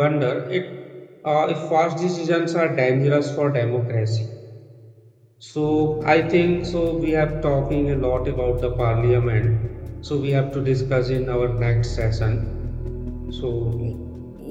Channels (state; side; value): identical; both; correlation 1.00